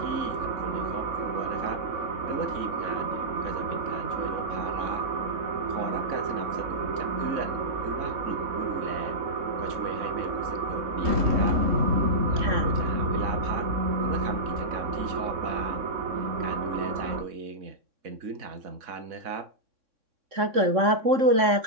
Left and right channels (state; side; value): late; left; 3.6 ms